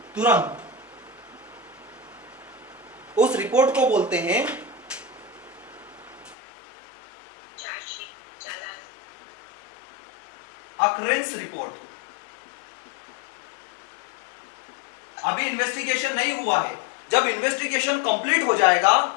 तुरंत। उस रिपोर्ट को बोलते हैं अकरेंस रिपोर्ट। अभी इन्वेस्टिगेशन नहीं हुआ है, जब इन्वेस्टिगेशन कंप्लीट हो जाएगा,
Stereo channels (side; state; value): right; drops out; at 6.4 s